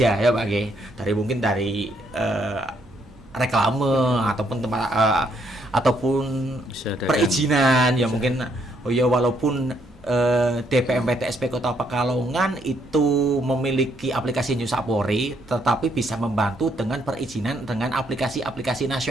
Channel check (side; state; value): both; normal; correlation 0.72